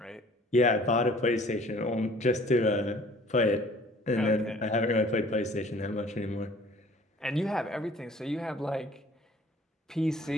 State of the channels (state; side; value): normal; both; correlation 0.52